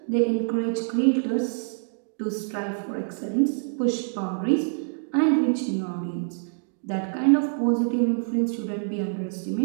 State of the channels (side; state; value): left; silent; digital silence